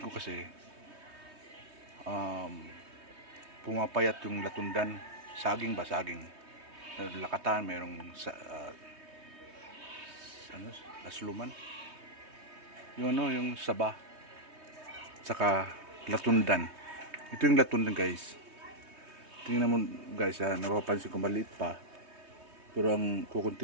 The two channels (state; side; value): late; left; 3.2 ms